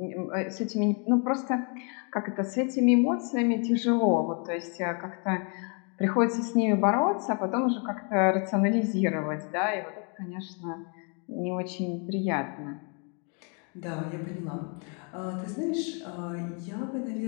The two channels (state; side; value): quieter; right; 37.8 dB